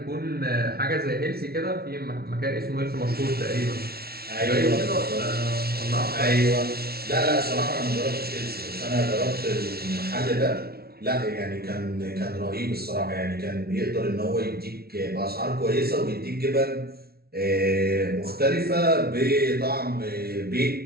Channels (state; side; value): late; left; 0.45 ms